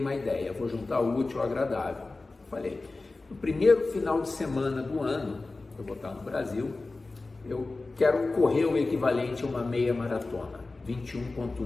uma ideia, vou juntar o útil ao agradável. Falei, no primeiro final de semana do ano, eu vou estar no Brasil, eu quero correr o equivalente a uma meia maratona,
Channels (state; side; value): quieter; right; 3.4 dB